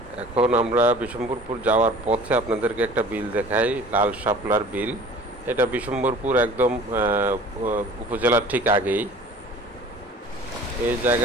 এখন আমরা বিশম্বরপুর যাওয়ার পথে আপনাদেরকে একটা বিল দেখাই, লাল শাপলার বিল। এটা বিশম্বরপুর একদম উপজেলার ঠিক আগেই। এই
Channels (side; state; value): both; normal; correlation 0.45